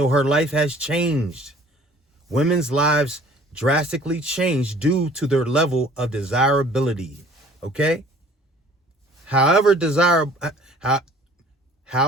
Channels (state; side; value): normal; both; correlation 0.52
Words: her life has changed. Women's lives drastically changed due to their level of desirability. Okay? However desirable,